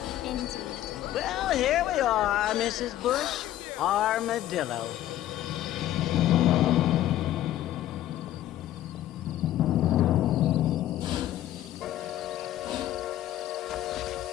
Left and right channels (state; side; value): quieter; right; 13.2 dB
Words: Indeed. Well, here we are, Mrs. Bush. Armadillo.